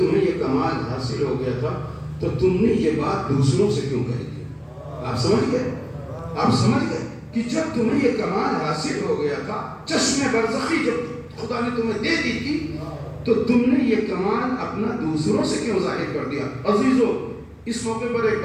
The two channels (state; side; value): identical; both; correlation 1.00